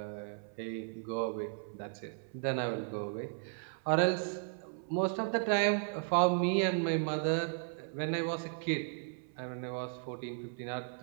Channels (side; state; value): left; silent; 54 dB below the other